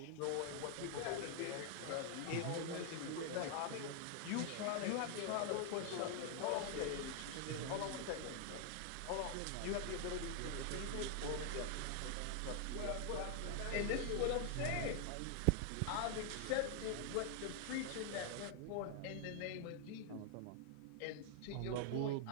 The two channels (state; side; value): different; both; correlation 0.00